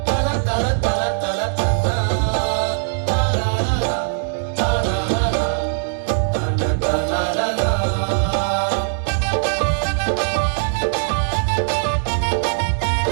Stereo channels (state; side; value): silent; left; digital silence